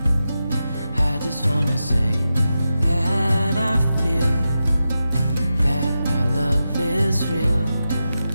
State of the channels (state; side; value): inverted; both; correlation -0.90